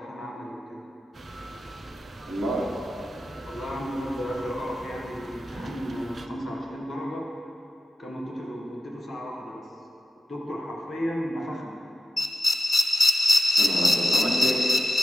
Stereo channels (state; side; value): normal; both; correlation 0.92